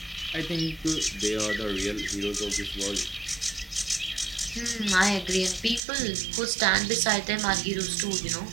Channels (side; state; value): left; drops out; at 5.8 s